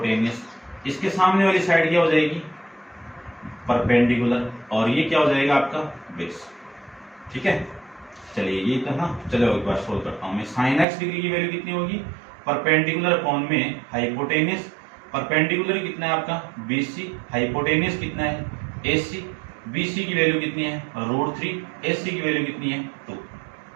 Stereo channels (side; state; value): left; drops out; at 10.9 s